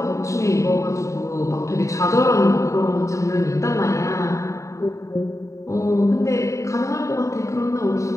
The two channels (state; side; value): late; right; 0.15 ms